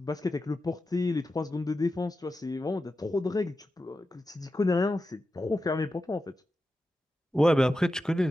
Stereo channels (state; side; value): normal; both; correlation 0.91